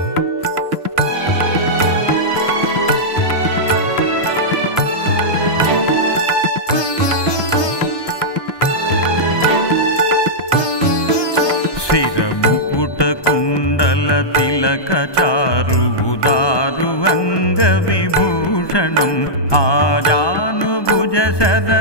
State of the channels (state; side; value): late; right; 1.2 ms